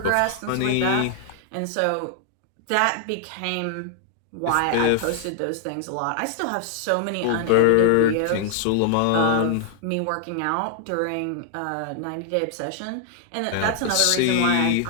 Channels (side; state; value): both; different; correlation 0.00